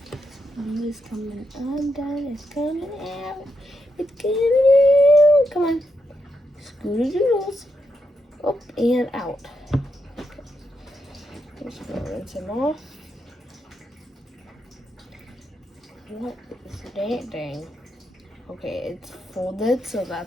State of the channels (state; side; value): normal; both; correlation 0.82